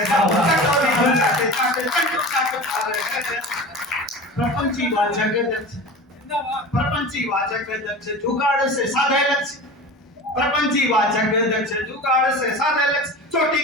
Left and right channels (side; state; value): both; normal; correlation 0.33